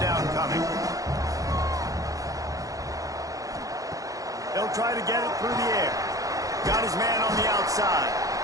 coming. They'll try to get it through the air. Got his man on the outside.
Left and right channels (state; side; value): late; left; 0.17 ms